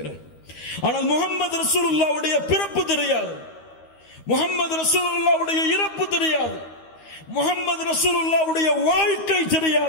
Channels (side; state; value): right; late; 13 ms